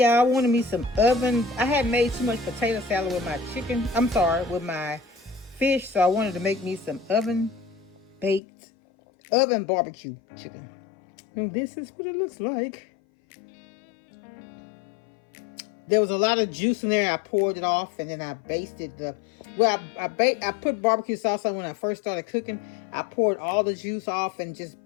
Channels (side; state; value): right; drops out; at 8.4 s